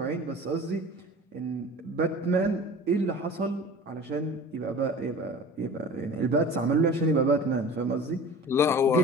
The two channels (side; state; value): both; normal; correlation 0.40